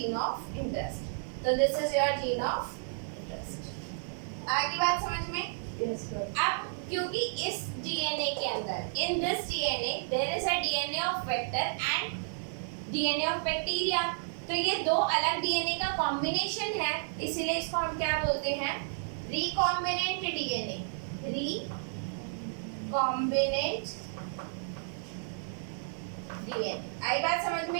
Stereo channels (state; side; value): silent; left; digital silence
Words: ऑफ इंटरेस्ट। तो this is your gene of interest. आगे बात समझ में? Yes, sir. अब क्योंकि इस डीएनए के अंदर, in this DNA there is a DNA of vector and DNA of bacteria. तो ये दो अलग डीएनए का कॉम्बिनेशन है, इसीलिए इसको हम क्या बोलते हैं, रिकॉम्बिनेंट डीएनए। Recombinant DNA. आई बात समझ